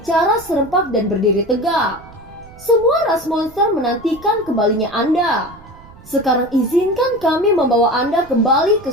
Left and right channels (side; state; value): right; noise; rumble, 22 dB below the sound